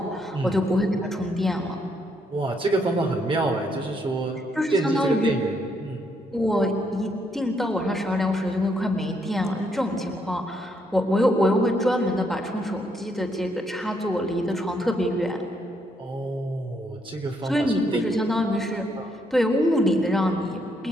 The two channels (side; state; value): both; normal; correlation 0.74